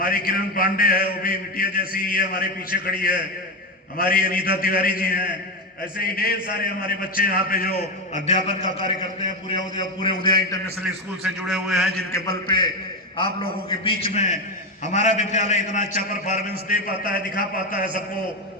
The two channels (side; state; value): both; normal; correlation 0.13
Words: किरण पांडे है, वो भी बिटिया जैसी ही है, हमारे पीछे खड़ी है। हमारी अनीता तिवारी जी हैं। ऐसे ही ढेर सारे हमारे बच्चे यहाँ पे जो अध्यापन का कार्य करते हैं, पूरे उदया इंटरनेशनल स्कूल से जुड़े हुए हैं, जिनके बल पे आप लोगों के बीच में हमारा विद्यालय इतना अच्छा परफॉर्मेंस दे पाता है, दिखा पाता है,